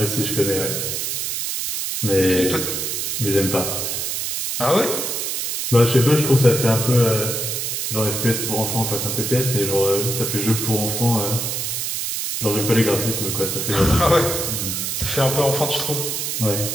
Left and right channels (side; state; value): right; noise; hiss, 2 dB below the sound